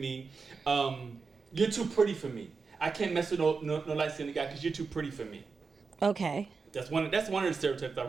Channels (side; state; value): left; quieter; 4.8 dB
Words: "You're too pretty for me. I can't mess with no light skinned guy because you're too pretty for me." Okay. That's one of the stereotypes I've